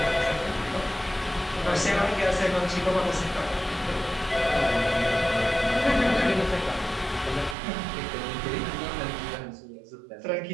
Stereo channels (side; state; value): left; drops out; at 7.6 s